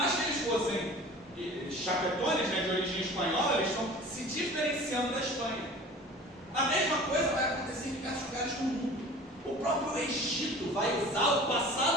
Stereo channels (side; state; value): both; normal; correlation 0.42